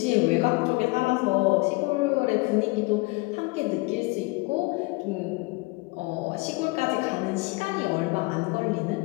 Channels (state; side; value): quieter; right; 25.6 dB